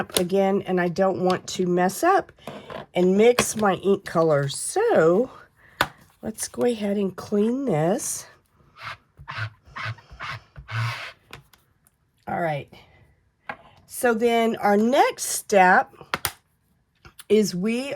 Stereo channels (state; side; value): identical; both; correlation 1.00